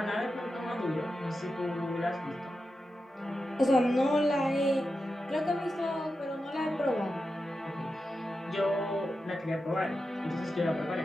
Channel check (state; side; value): normal; both; correlation 0.90